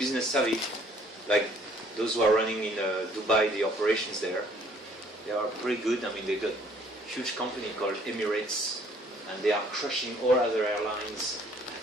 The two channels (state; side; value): normal; both; correlation 0.60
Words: savvy, like those who are running in Dubai, the operations there. They are pretty good. I mean, they got a huge company called Emirates, and they are crushing all other airlines.